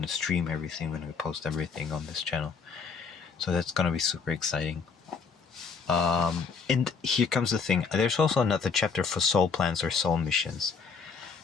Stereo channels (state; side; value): quieter; right; 5.4 dB